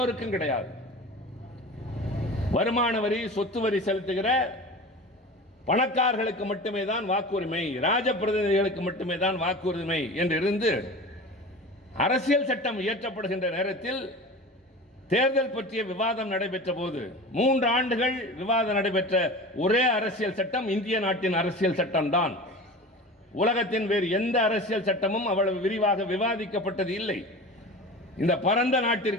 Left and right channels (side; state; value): both; normal; correlation 0.34